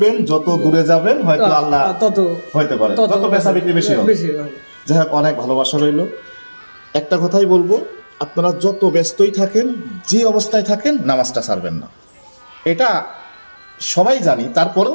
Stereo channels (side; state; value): both; inverted; correlation -1.00